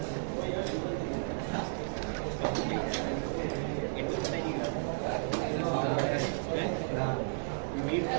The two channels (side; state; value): left; silent; 56 dB below the other